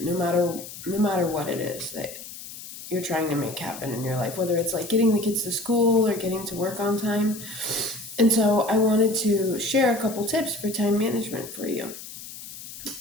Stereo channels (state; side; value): noise; left; hiss, 13 dB below the sound